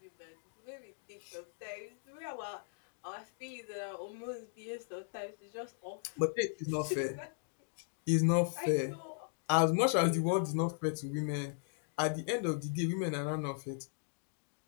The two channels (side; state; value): right; silent; digital silence